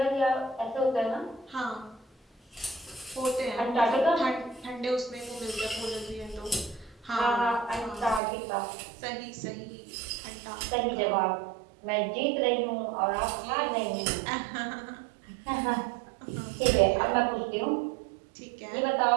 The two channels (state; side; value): drops out; left; at 8.2 s